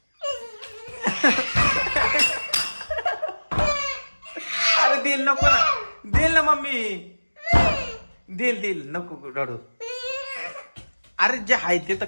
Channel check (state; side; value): inverted; both; correlation -1.00